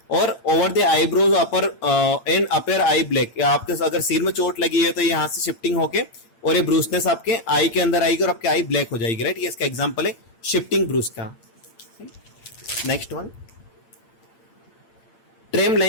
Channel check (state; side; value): late; right; 8.8 ms